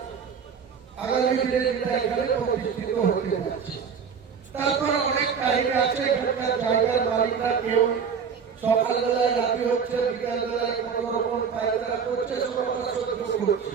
আগামী দিনে যেটা এখানে প্রতিষ্ঠিত হতে যাচ্ছে। তারপর অনেক কাহিনী আছে। এখানকার জায়গার মালিকরা কেউ সকালবেলায় রাতি হচ্ছে, বিকালবেলায় কত রকম পায়খানা করছে, সব আমরা সহ্য করছি।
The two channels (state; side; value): quieter; left; 6.5 dB